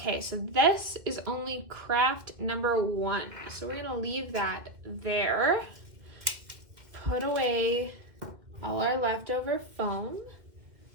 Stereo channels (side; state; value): left; late; 2.0 ms